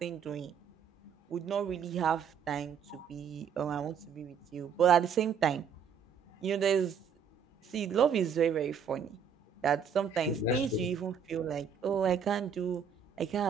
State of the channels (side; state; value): left; quieter; 7.1 dB